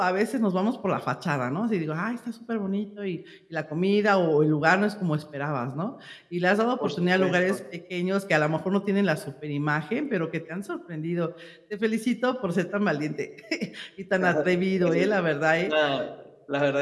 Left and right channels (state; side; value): identical; both; correlation 1.00